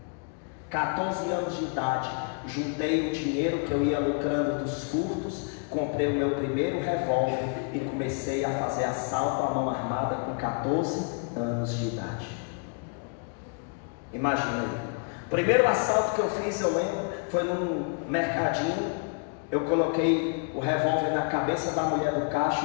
14 anos de idade, juntei o dinheiro que eu ia lucrando dos furtos, comprei o meu primeiro revólver e comecei a fazer assalto à mão armada com 14 anos de idade. Imagina aí. O primeiro assalto que eu fiz, eu lembro, foi num mercadinho Eu coloquei o revólver na cabeça da mulher do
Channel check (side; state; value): right; quieter; 39.3 dB